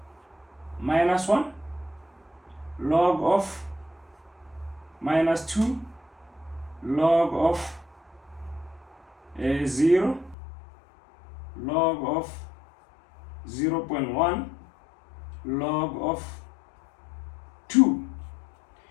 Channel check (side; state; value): right; drops out; at 10.4 s